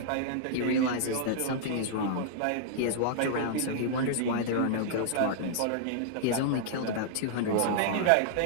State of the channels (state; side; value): different; both; correlation -0.01